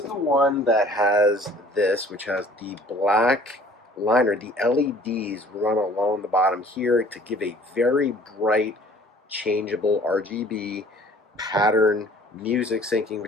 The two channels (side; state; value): both; normal; correlation 0.52